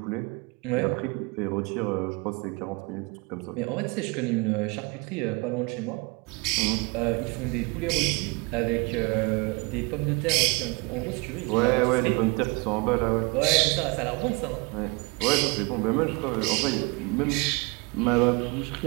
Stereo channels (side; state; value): left; quieter; 28.5 dB